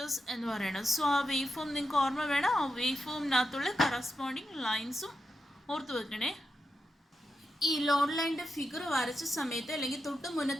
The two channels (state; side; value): normal; both; correlation 0.88